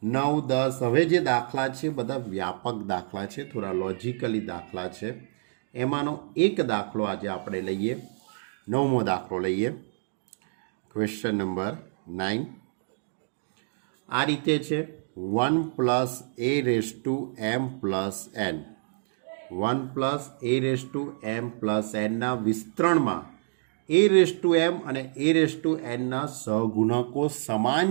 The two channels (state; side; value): silent; left; digital silence